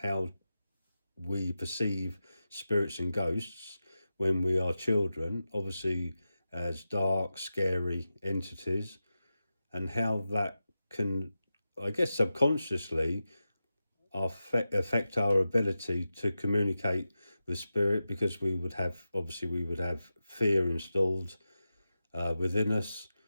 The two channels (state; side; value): inverted; both; correlation -0.92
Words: how we perceive spirits and ghosts when we are children, obviously as dark, scary entities, and how that can, I guess, subconsciously affect our ability to communicate with spirit, because we would have fear installed within us,